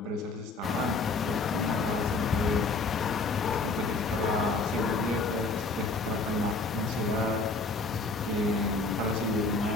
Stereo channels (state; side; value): quieter; right; 3.7 dB